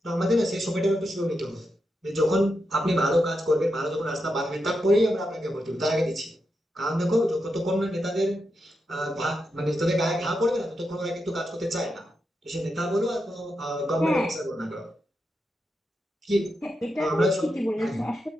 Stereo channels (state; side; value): normal; both; correlation 0.86